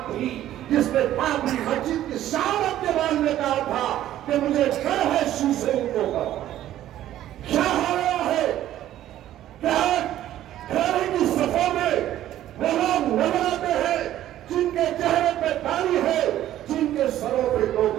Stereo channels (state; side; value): quieter; left; 12.8 dB